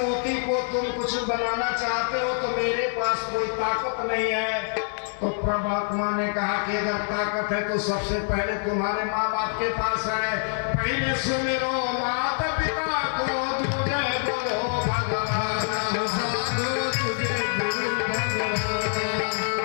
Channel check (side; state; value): right; silent; digital silence